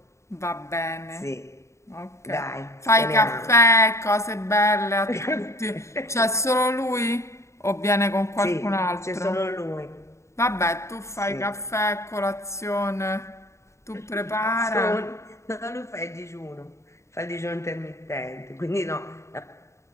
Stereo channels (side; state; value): right; late; 0.14 ms